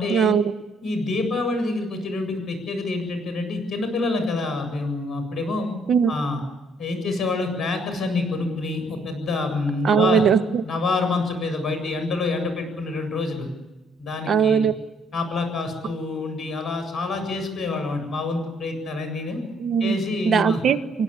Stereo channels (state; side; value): normal; both; correlation 0.66